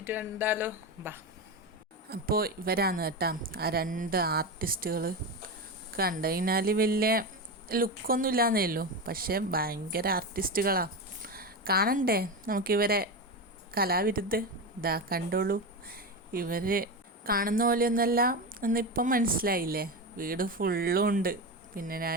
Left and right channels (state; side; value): normal; both; correlation 0.18